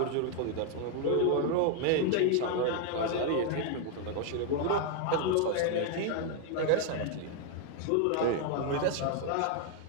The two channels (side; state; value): both; different; correlation 0.00